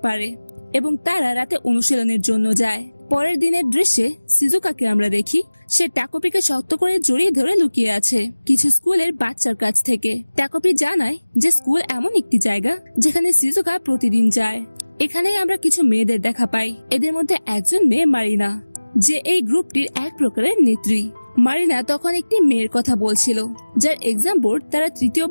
পারে, এবং তারা রাতে অনুশীলনের জন্য যায়। পরের দিনের দৃশ্যে সিজুকাকে আমরা দেখি সে টাকোপিকে শক্ত করে জড়িয়ে ধরে লুকিয়ে আছে কিছু স্কুলের বাচ্চার কাছ থেকে। টাকোপি জানায় যে স্কুল এমন একটি জায়গা যেখানে সিজুকা প্রতিদিন যায়। এখানেই আমরা কিছু মেয়েদের দেখা পাই। এদের মধ্যে একজন মেয়ে মারিনা, যে এই গ্রুপটির এক প্রকারের নেত্রী। মারিনা তখন একটি মেয়ের কথা বলছিল যার এক্সাম বোর্ড তারা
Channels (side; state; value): both; inverted; correlation -1.00